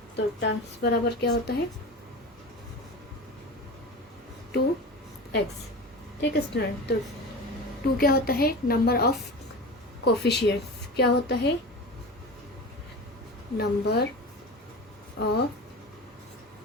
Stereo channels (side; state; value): both; normal; correlation 0.30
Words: तो टर्म्स बराबर क्या होता है 2x। ठीक है स्टूडेंट, तो 2 क्या होता है नंबर ऑफ कोफिशिएंट्स, क्या होता है नंबर ऑफ